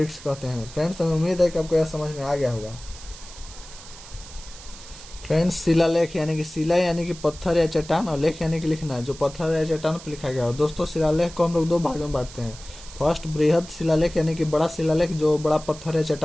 कहते हैं। फ्रेंड्स, हमें उम्मीद है कि आपको यह समझ में आ गया होगा। फ्रेंड्स, शिलालेख यानी कि शिला यानी कि पत्थर या चट्टान, और लेख यानी कि लिखना, जो पत्थर या चट्टान पर लिखा गया हो। दोस्तों, शिलालेख को हम लोग 2 भागों में बांटते हैं। फर्स्ट, बृहद शिलालेख यानी कि बड़ा शिलालेख जो बड़ा पत्थर या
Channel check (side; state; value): right; noise; hiss, 17 dB below the sound